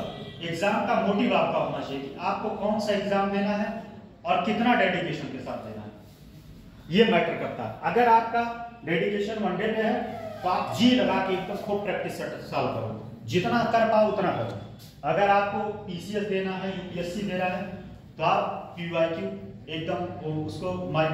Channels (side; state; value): both; identical; correlation 1.00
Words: एग्जाम का मोटिव आपका होना चाहिए कि आपको कौन सा एग्जाम देना है और कितना डेडिकेशन के साथ देना है, ये मैटर करता है। अगर आपका डेडिकेशन वनडे में है तो आप जी लगा के एकदम खूब प्रैक्टिस सॉल्व करो, जितना कर पाओ उतना करो। अगर आपको पीसीएस देना है, यूपीएससी देना है, तो आप पीवाईक्यू एकदम उसको माय